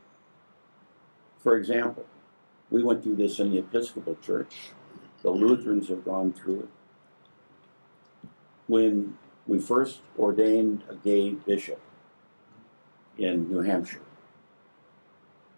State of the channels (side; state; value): both; inverted; correlation -1.00